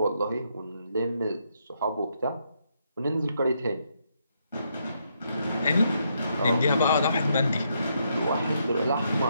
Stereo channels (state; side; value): inverted; both; correlation -0.77